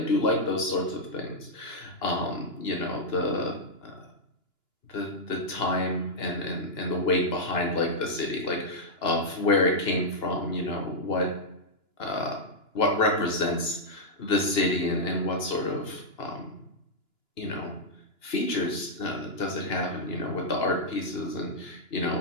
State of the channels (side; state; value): right; late; 2.9 ms